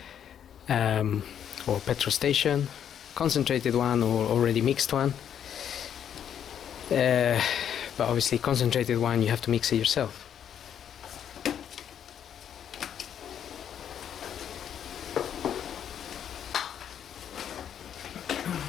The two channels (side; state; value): right; quieter; 9.1 dB